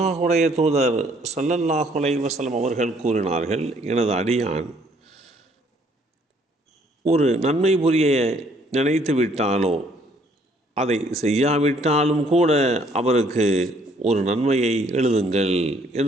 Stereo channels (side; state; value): both; normal; correlation 0.63